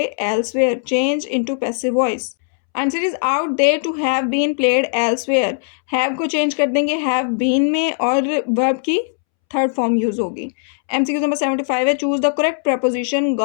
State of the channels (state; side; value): silent; right; 67 dB below the other